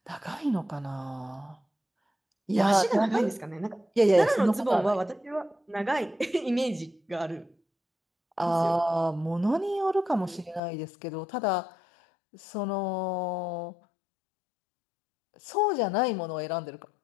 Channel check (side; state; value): right; drops out; at 10.6 s